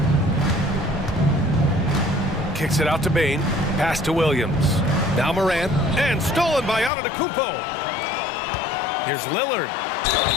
Kicks it out to Bane. Pass to Williams. Now Morant. And stolen by Antetokounmpo. Here's Lillard.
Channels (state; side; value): drops out; right; at 6.9 s